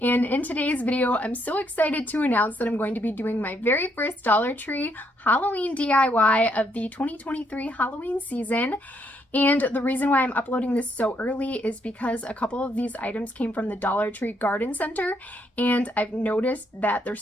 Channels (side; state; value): both; normal; correlation 0.73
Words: and in today's video, I'm so excited to announce that I'm going to be doing my very first Dollar Tree Halloween DIY of the 2023 Halloween season. And the reason why I'm uploading this so early is because a couple of these items came from the Dollar Tree Garden Center, and I've noticed that their